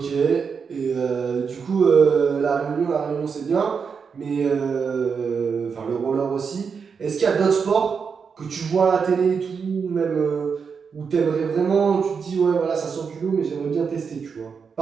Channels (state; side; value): quieter; left; 5.9 dB